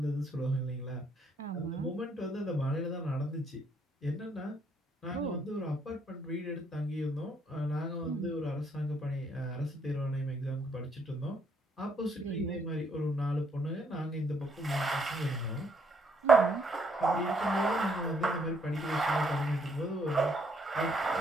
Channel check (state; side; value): normal; both; correlation 0.70